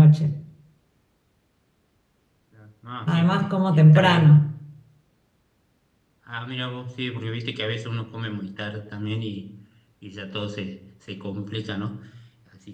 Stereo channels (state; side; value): identical; both; correlation 1.00